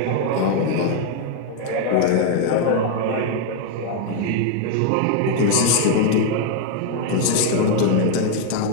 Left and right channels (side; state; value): both; different; correlation 0.00